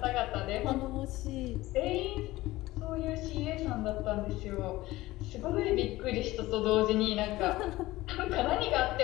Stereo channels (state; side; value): quieter; right; 18.0 dB